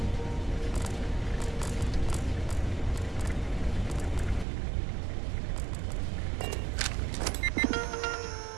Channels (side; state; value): left; drops out; at 4.5 s